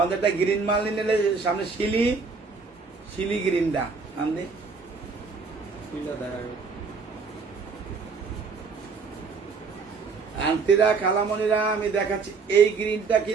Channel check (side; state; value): left; quieter; 4.8 dB